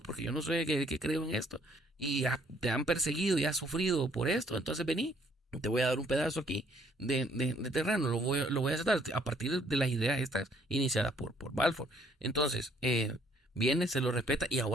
porque yo no sé que creo en esto, y te han perseguido y has sufrido por esto, entonces vení, te voy a dar un pedazo aquí de terreno, lo voy a aceptar a partir de las ideas estas iniciadas por Balfour. Entonces, viene, se lo respeta, y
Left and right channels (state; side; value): normal; both; correlation 0.64